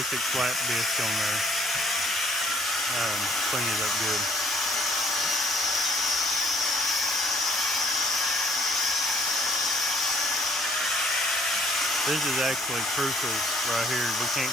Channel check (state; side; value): normal; both; correlation 0.61